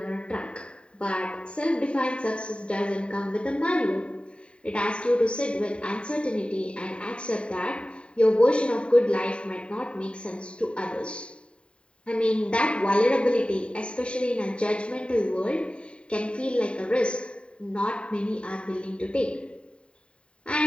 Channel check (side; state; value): right; late; 0.055 ms